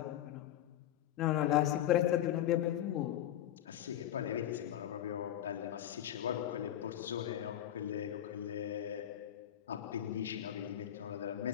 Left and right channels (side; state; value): right; quieter; 11.8 dB